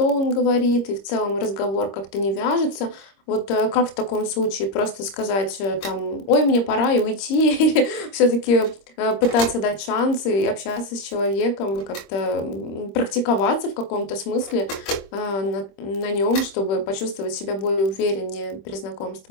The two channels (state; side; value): late; right; 26 ms